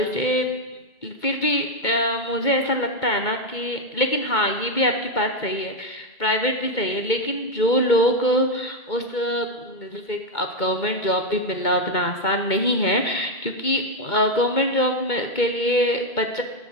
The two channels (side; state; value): right; late; 2.2 ms